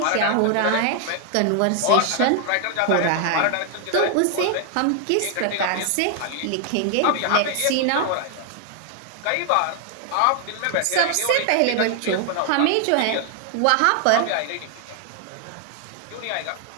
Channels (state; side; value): different; both; correlation 0.00